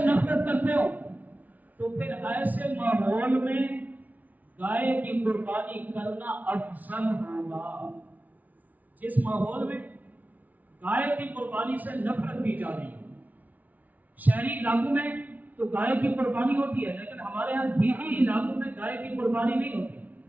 نفرت کرتے ہوں، تو پھر ایسے ماحول میں گائے کی قربانی کرنا افضل ہوگا۔ جس ماحول میں گائے کی قربانی سے نفرت کی جا رہی ہے، شہری علاقوں میں تو گائے کی قربانی ہوتی ہے، لیکن ہمارے یہاں دیہی علاقوں میں گائے کی قربانی نہیں ہوتی،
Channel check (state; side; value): late; left; 0.076 ms